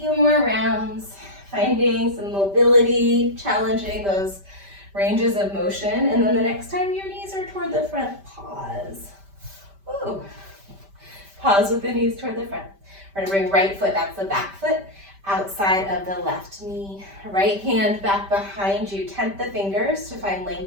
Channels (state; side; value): late; left; 5.1 ms